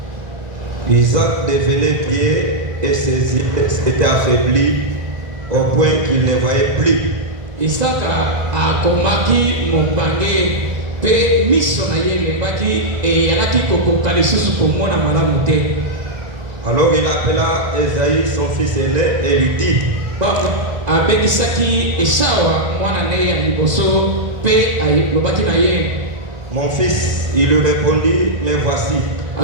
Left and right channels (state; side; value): late; left; 1.5 ms